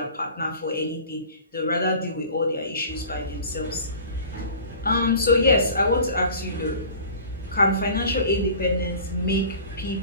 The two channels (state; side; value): inverted; both; correlation -0.43